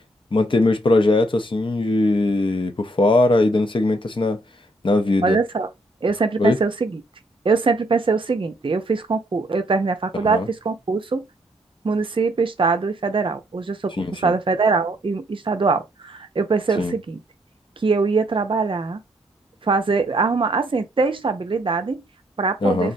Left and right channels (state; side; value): normal; both; correlation 0.70